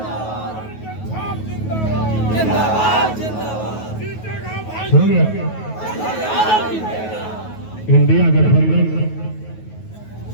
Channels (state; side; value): late; right; 9.3 ms